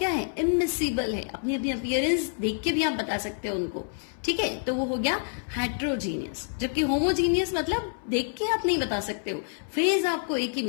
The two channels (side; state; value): right; silent; 60 dB below the other